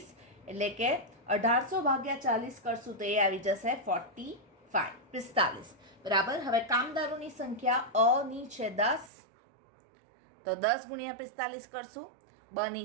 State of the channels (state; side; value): drops out; left; at 9.1 s